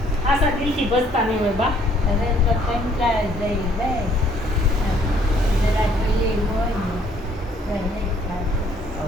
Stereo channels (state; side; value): normal; both; correlation 0.63